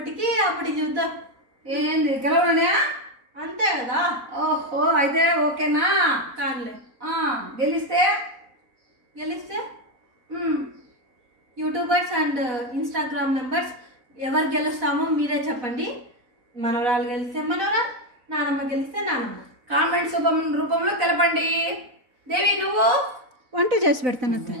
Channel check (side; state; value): left; late; 4.0 ms